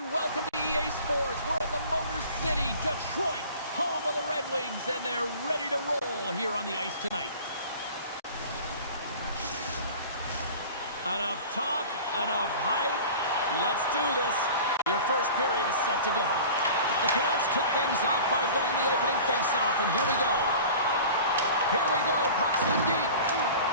welcome to EA Sports. We're in the Motor City, Detroit, home of the Red Wings, and they're ready to roll here on the ice tonight. Enough talk, enough hype. Let's do this. Your first period is set to go. The Canucks kick things off by winning the opening faceoff, and here we go. Here we go, puck's in deep.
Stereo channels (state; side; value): inverted; both; correlation -0.40